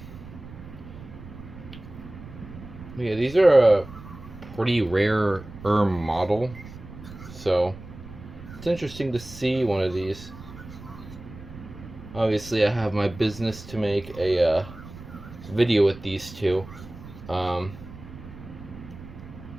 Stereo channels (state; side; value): noise; right; rumble, 15 dB below the sound